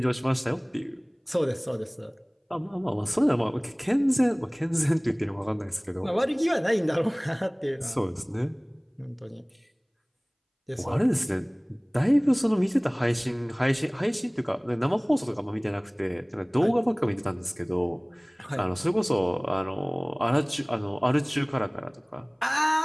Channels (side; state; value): both; identical; correlation 1.00